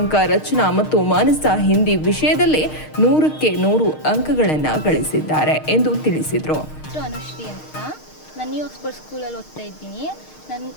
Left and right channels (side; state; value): right; late; 6.5 ms